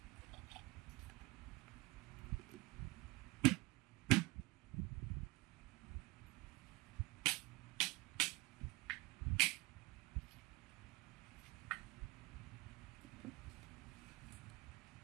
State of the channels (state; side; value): quieter; left; 22.2 dB